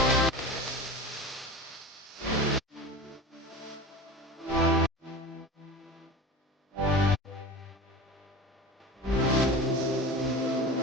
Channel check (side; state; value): both; normal; correlation 0.32